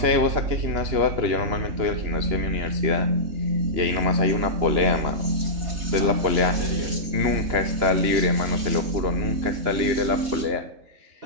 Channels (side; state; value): left; late; 2.9 ms